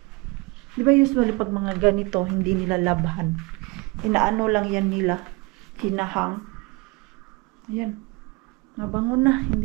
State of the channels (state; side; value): quieter; left; 26.5 dB